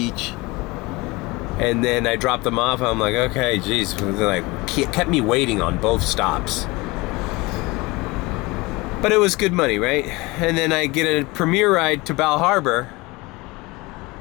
and then I dropped them off. I'm like, okay, geez, they like kept me waiting on both stops, but it was good money, right? And then I get a premiere ride to Bal Harbor,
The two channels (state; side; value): quieter; right; 23.3 dB